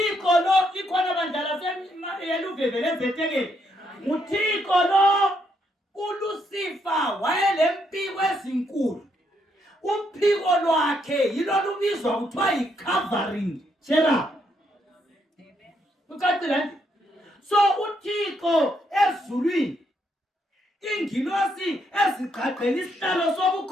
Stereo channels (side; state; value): both; normal; correlation 0.76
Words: lo ikhona bandla yeluveve lezetekeli nguThixo lo uLucifer wayelempiko ezinkulu uphiko lwakhe yilo lubizwa kuthiwa yi-covering therapy ucacile so uThixo ezulwini ingilosi ezigqagqela isihlalo